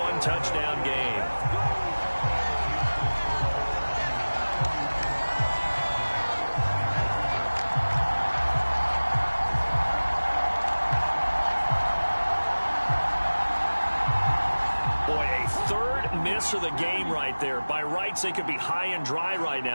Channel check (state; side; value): inverted; both; correlation -1.00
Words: game. Miss of the game right there. By rights, they could be high and dry right